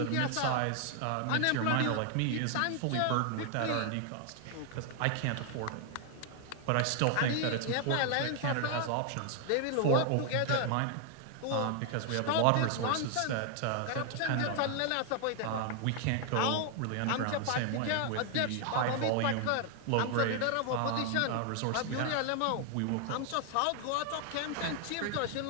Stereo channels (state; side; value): different; both; correlation 0.00